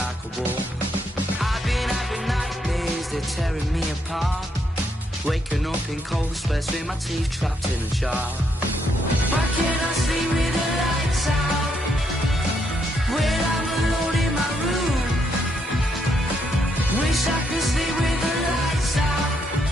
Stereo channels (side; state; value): both; normal; correlation 0.76